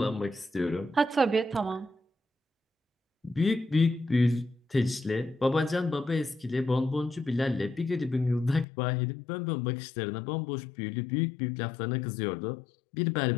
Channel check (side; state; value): right; drops out; at 8.7 s